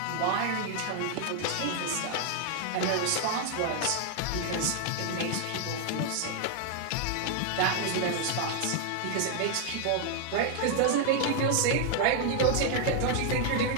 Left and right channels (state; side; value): different; both; correlation 0.00